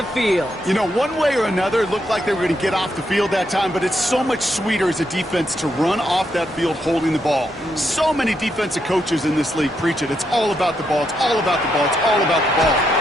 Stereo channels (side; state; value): both; normal; correlation 0.80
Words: field. You know, one way or another, it looked like they were going to get off the field that time, but it's so much sweeter as a defense to run off that field holding the ball. So many defensive coaches in this league preach it. It's all about the ball. It's all about the ball. It's all about the ball.